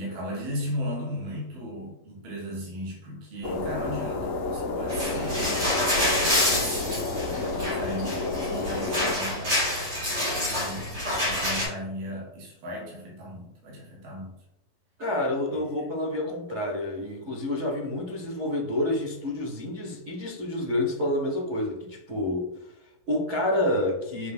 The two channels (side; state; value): left; late; 11 ms